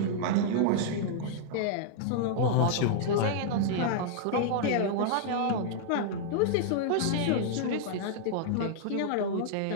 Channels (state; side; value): different; both; correlation -0.01